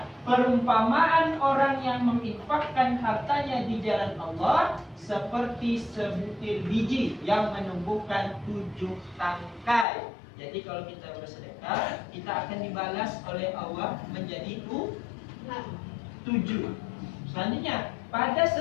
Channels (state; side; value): drops out; right; at 9.9 s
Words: perumpamaan orang yang menginfakkan hartanya di jalan Allah seperti sebutir biji yang menumbuhkan 7 tangkai. Jadi kalau kita bersedekah, kita akan dibalas oleh Allah menjadi 7. Selanjutnya, pada